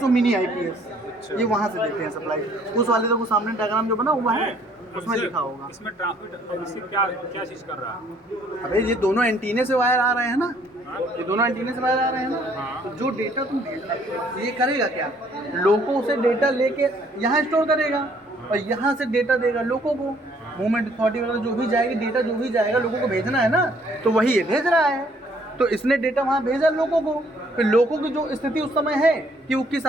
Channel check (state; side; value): normal; both; correlation 0.63